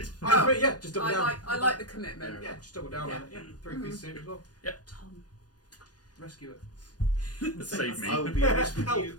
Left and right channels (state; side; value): late; right; 0.69 ms